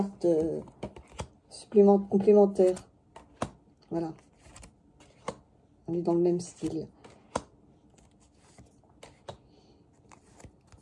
complémentaires. Voilà. On est dans le même style.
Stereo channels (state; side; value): identical; both; correlation 1.00